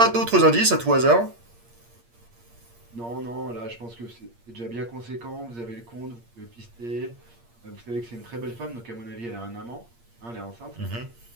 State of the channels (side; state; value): left; late; 8.6 ms